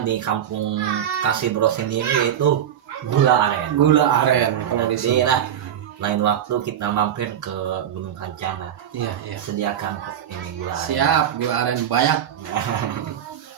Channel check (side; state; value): left; quieter; 9.9 dB